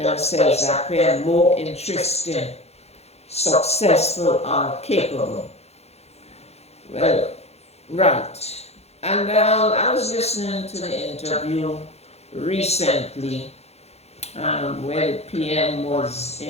appear more interesting, successful, or capable. Well, right. And I was listening to the interview recently where the PM was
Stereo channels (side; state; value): right; late; 0.31 ms